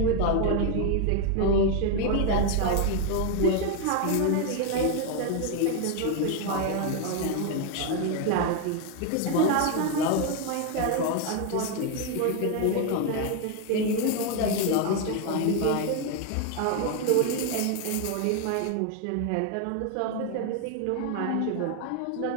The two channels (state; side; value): different; both; correlation 0.01